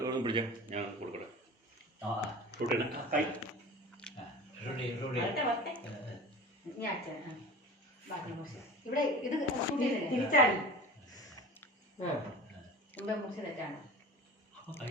പിടിച്ച ഞാൻ കൊടുക്കട്ടെ റൂട്ടിന് ഞാൻ അച്ഛൻ ബാക്കി മുറിച്ച് ഇവിടെ ഇത് തിരിച്ചാടി മുമ്പേ മുറിച്ച് തെറ്റാണ് അപ്പോൾ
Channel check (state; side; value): normal; both; correlation 0.36